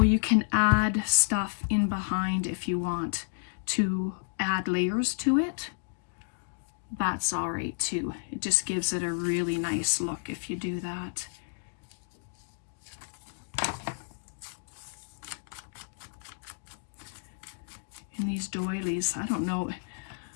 you can add stuff in behind if you want to add layers to it. That's all right too. It just gives it a really nice look if you do that. And these doilies, I don't know,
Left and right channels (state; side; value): silent; right; digital silence